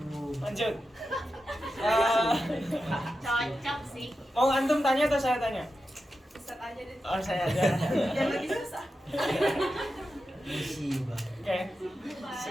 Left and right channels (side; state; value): both; normal; correlation 0.90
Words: lanjut. Cocok sih. Mau antum tanya atau saya tanya? Ustaz aja deh. Oh, saya aja. Yang lagi susah. Musibah. Oke.